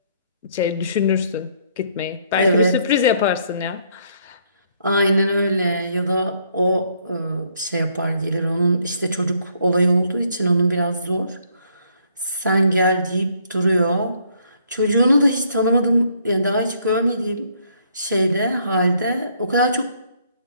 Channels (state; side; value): inverted; both; correlation -0.68